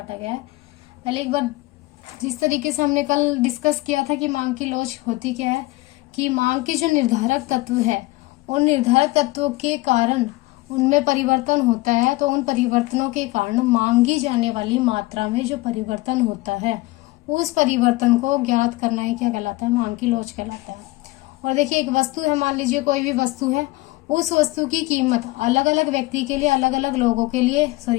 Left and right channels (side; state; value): right; quieter; 20.4 dB